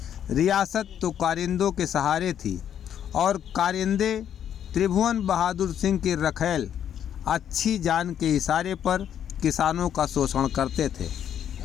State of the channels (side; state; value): right; quieter; 9.5 dB